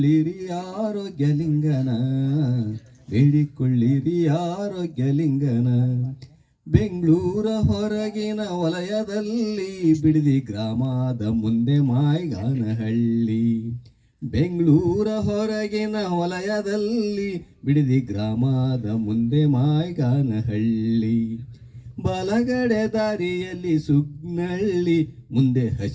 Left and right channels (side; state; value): both; identical; correlation 1.00